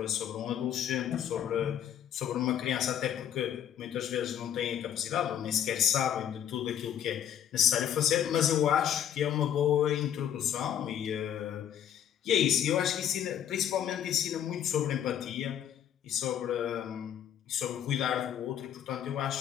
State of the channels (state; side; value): quieter; right; 9.9 dB